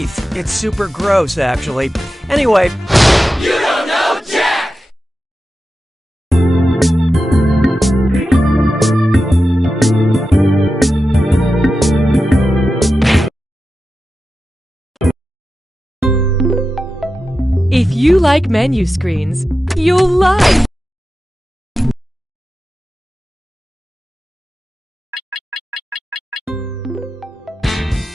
It's super gross, actually. Anyway... You don't know Jack! If you like menu screens, you'll love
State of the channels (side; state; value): both; normal; correlation 0.92